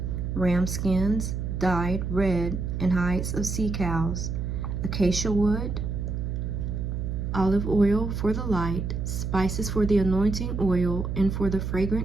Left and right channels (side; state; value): right; noise; hum, 3 dB below the sound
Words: ram skins, dyed red, and hides of sea cows, acacia wood, olive oil for the light, spices for the anointing oil and for the